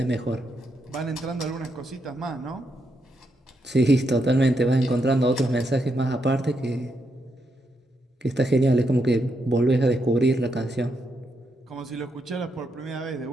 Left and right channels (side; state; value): both; normal; correlation 0.81